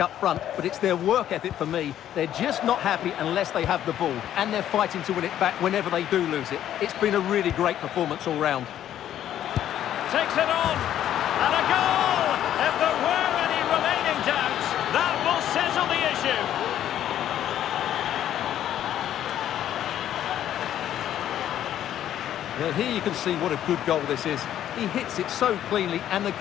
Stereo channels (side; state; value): right; quieter; 11.2 dB